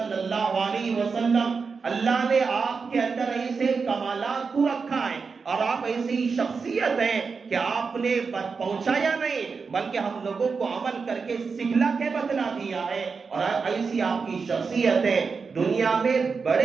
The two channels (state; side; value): quieter; left; 5.1 dB